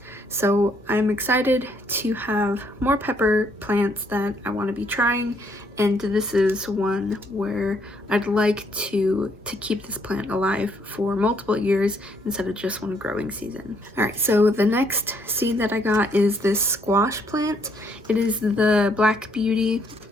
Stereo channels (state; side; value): normal; both; correlation 0.70